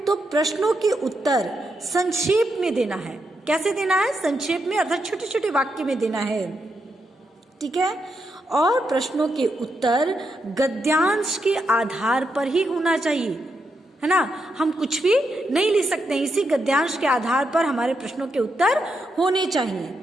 प्रश्नों के उत्तर संक्षेप में देना है। कैसे देना है? संक्षेप में, अर्थात छोटे छोटे वाक्य में देना है। ठीक है, और प्रश्नों के उत्तर गद्यांश के आधार पर ही होना चाहिए, है ना। हम कुछ भी नहीं लिख सकते, इसी गद्यांश के आधार पर हमारे प्रश्नों के उत्तर होने चाहिए।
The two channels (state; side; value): normal; both; correlation 0.83